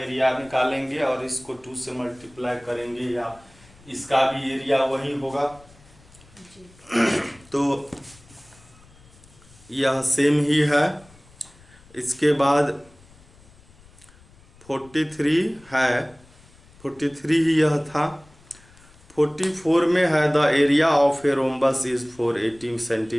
निकालेंगे और इसको 2 से मल्टीप्लाई करेंगे या इसका भी एरिया वही होगा जी। तो यह सेम ही है। इसके बाद 43 है, 43 ही यह था। 44 में है the area of a rhombus is 480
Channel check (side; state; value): left; noise; rumble, 26 dB below the sound